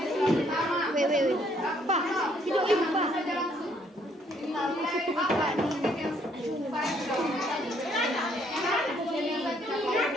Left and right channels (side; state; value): both; normal; correlation 0.67